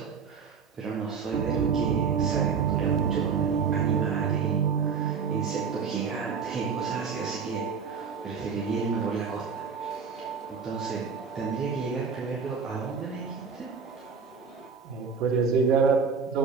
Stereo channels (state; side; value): quieter; left; 5.9 dB